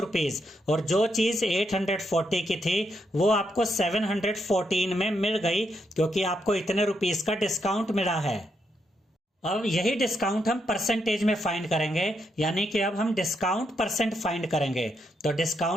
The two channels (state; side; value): normal; both; correlation 0.79